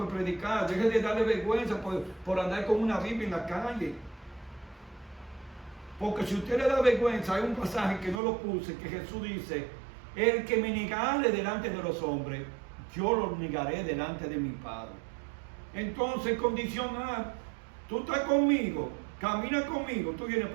predicar, deje de darle vergüenza por andar con una Biblia en la calle. Porque si usted le da vergüenza, hay un pasaje que no lo puse, que Jesús dice: el que me negare delante de los hombres, yo lo negaré delante de mi Padre. Entonces, condicional, tú estás conmigo, camina conmigo, tú vienes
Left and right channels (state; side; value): drops out; left; at 8.2 s